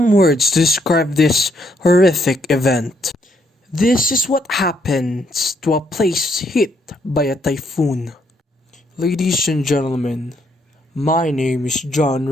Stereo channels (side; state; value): both; normal; correlation 0.73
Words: words to describe this horrific event. This is what happens to a place hit by a typhoon. Ladies and gentlemen, my name is John